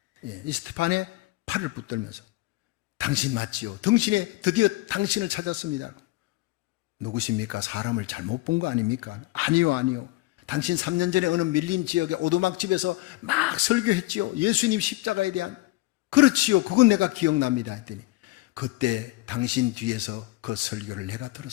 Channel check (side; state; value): right; quieter; 19.7 dB